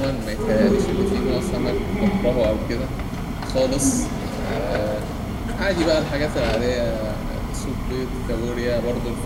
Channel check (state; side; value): identical; both; correlation 1.00